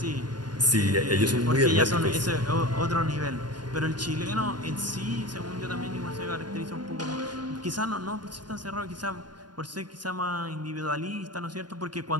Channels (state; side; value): late; left; 0.70 ms